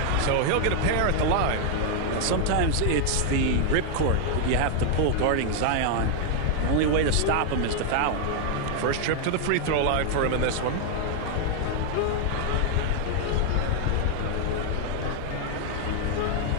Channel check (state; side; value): different; both; correlation 0.00